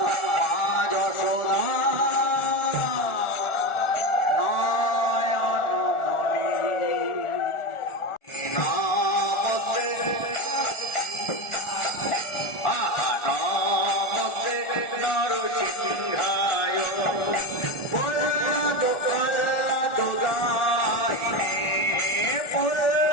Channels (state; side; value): late; right; 1.4 ms